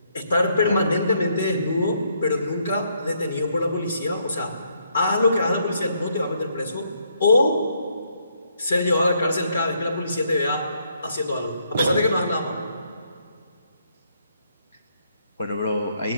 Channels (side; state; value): both; inverted; correlation -0.72